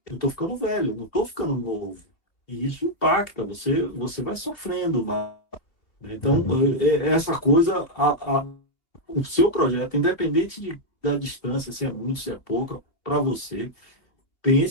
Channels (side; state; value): right; late; 2.9 ms